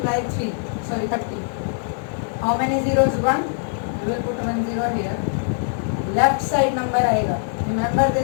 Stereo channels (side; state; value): right; silent; digital silence